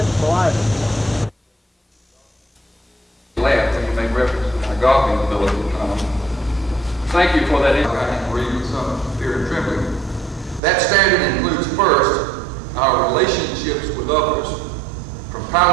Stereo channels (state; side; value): drops out; left; at 10.6 s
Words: items. Laughed when you make reference to my golfing ability. Thank you for that. I can read with some fear and trembling. That standard includes first our relationships with others, from